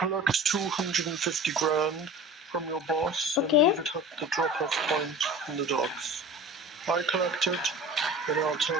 collect 250 grand from your boss Okay. and leave it at the drop-off point in the docks. I collect it, and I'll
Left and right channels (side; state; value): both; normal; correlation 0.38